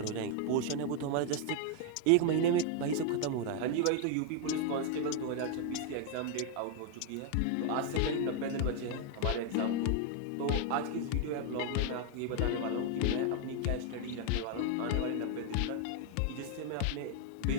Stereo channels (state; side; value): different; both; correlation 0.00